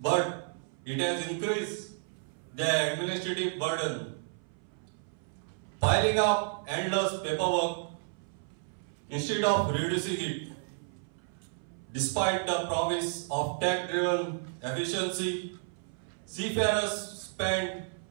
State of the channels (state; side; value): silent; left; 57 dB below the other